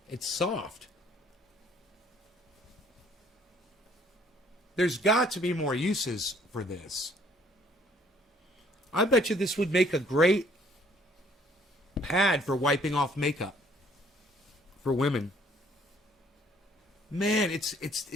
It's soft. There's got to be more uses for this. I bet you this would make a great pad for wiping off makeup for women. Man, it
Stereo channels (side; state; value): both; normal; correlation 0.60